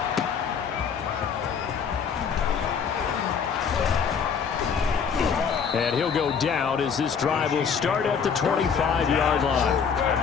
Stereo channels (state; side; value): quieter; right; 6.6 dB